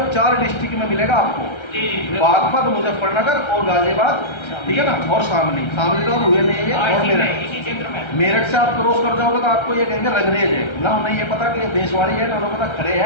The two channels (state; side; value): late; right; 1.3 ms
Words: 4 डिस्ट्रिक्ट में मिलेगा आपको, बागपत, मुजफ्फरनगर और गाजियाबाद, ठीक है ना, और शामली तो अब हुए नहीं है, और मेरठ से आप क्रॉस कर जाओगे तो आपको ये कहेंगे रंगरेज है ना, उन्हें ये पता कि देशवाड़ी है ना, उन्हें पता खड़े